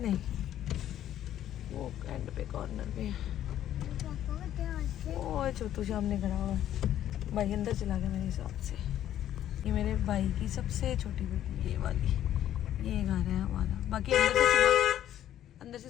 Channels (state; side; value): quieter; right; 11.6 dB